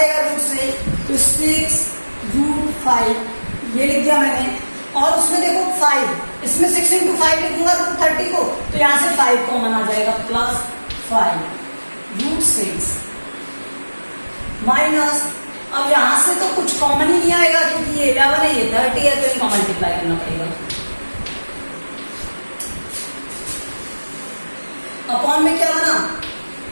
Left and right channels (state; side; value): inverted; both; correlation -1.00